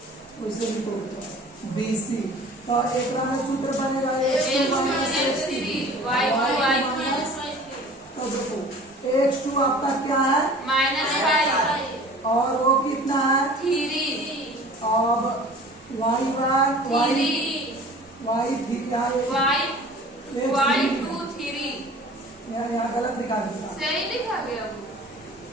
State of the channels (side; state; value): both; normal; correlation 0.44